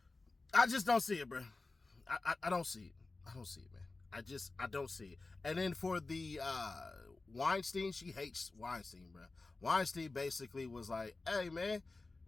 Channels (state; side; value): quieter; right; 3.5 dB